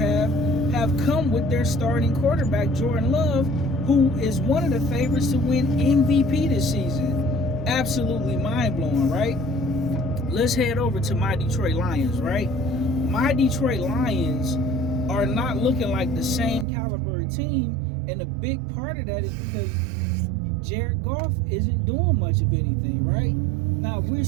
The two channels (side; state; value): left; drops out; at 16.7 s